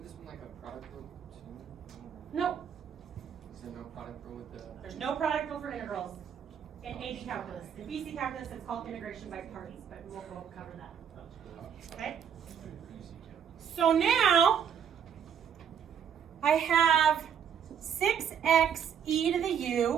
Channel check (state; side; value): quieter; left; 8.1 dB